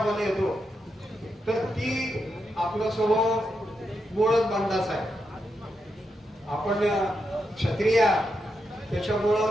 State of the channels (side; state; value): both; normal; correlation 0.84